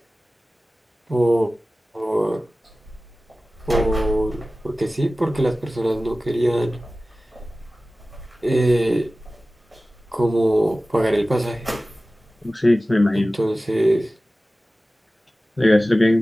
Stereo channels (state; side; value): normal; both; correlation 0.96